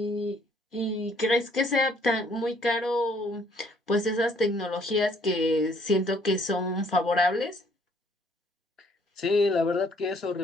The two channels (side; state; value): both; normal; correlation 0.63